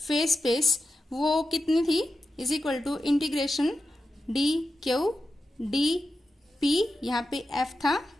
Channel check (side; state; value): both; normal; correlation 0.90